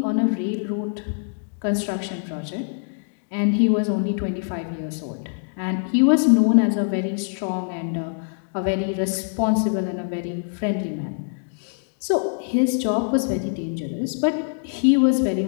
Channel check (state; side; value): silent; right; digital silence